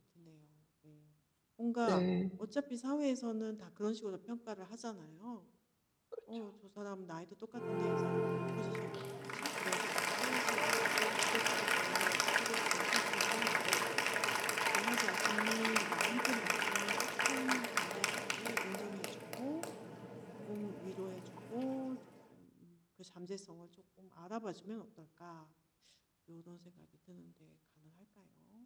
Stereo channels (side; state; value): both; identical; correlation 1.00